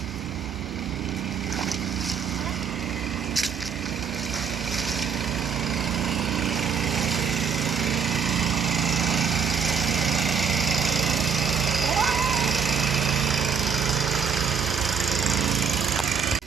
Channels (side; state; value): left; quieter; 6.6 dB